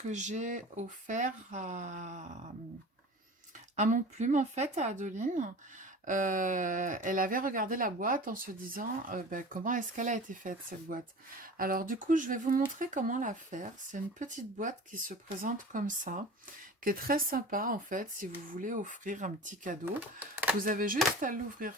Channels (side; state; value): both; normal; correlation 0.37